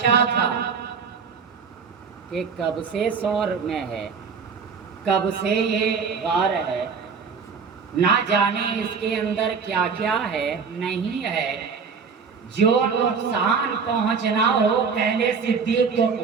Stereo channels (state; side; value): quieter; left; 5.7 dB